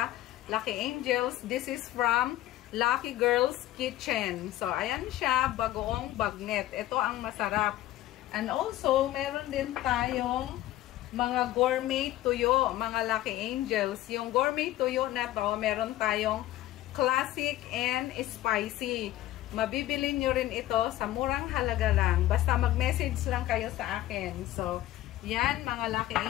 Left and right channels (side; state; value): right; quieter; 14.8 dB